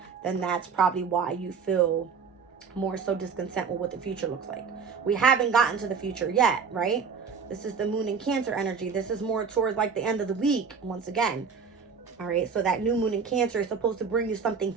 then that's probably why you feel more so discontent with what the future looks like. We haven't gotten to the future yet, right? This is the moon in Cancer energy. This is more towards like the end of the week, once again. All right, so that new moon in Cancer is supposed to bring you something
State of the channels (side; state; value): left; quieter; 5.8 dB